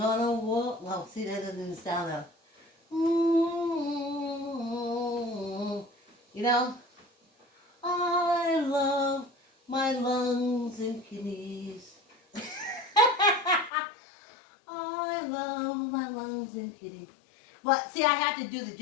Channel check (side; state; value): right; drops out; at 13.7 s